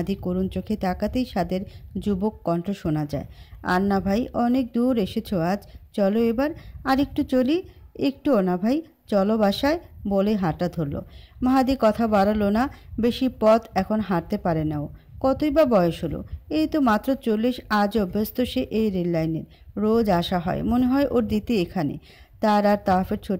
করুণ চোখে তাকাতেই সাদের যুবক কণ্ঠ শোনা যায়, আর না ভাই, অনেক দূর এসেছো আজ, চলো এবার আর একটু চলি। একটুও না ভাই, চলো বাসায়, বলে হাঁটা ধরল। মাহাদি কথা বাড়ালো না, বেশি পথ এখন হাঁটতে পারে না ও। কতই বা বয়স হলো, এই তো মাত্র 40। আজ অভ্যস্ত সে এই রেল লাইনের, রোজ আসা হয়, মনে হয় ওর দিতে এখানে, তার আর তাওয়াফের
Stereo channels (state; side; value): identical; both; correlation 1.00